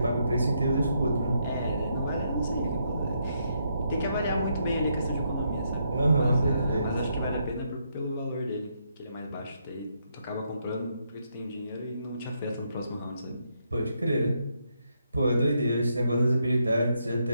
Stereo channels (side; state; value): both; inverted; correlation -0.77